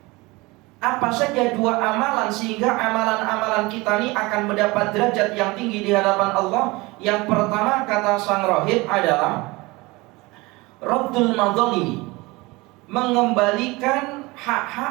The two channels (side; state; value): left; quieter; 23.1 dB